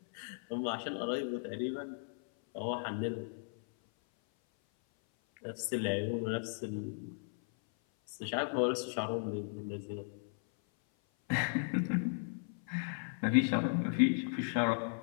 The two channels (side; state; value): right; silent; 54 dB below the other